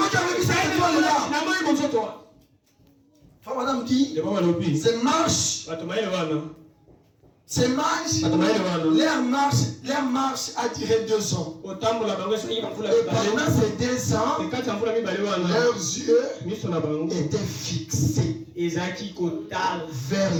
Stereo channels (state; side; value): identical; both; correlation 1.00